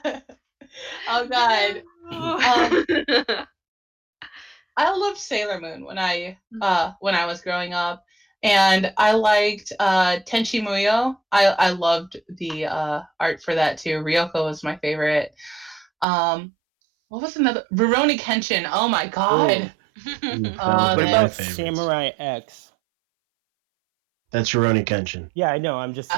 no! Oh god. Um, I loved Sailor Moon when I was growing up, and I liked Tenchi Muyo. I loved the art for that too. Ryoko was my favorite. Um, what was another? Rurouni Kenshin. Oh my Oh, god. Ooh, that was Oh what one of man. my about favorites. Samurai X? That's Rurouni Kenshin. Yeah, I know. I'm just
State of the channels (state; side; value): drops out; left; at 16.1 s